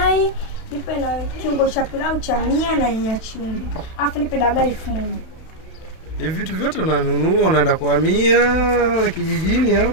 nipe na kiungo cha pilau cha 100 na nyanya chungu. Alafu nipe dagaa 1000. Hivi vitu vyote unanunua unaenda kuhamia kijijini au?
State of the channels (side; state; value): right; late; 31 ms